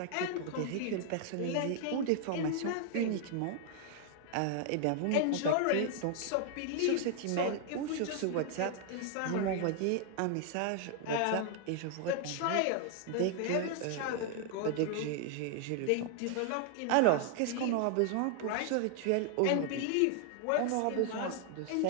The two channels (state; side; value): different; both; correlation 0.00